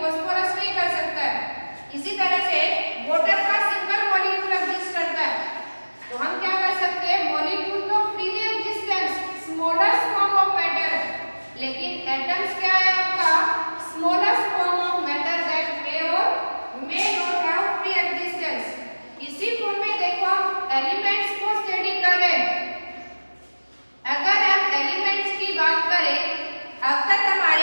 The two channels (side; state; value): both; inverted; correlation -1.00